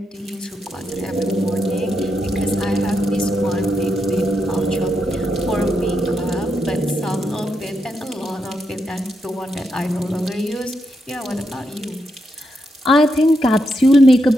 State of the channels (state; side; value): normal; both; correlation 0.83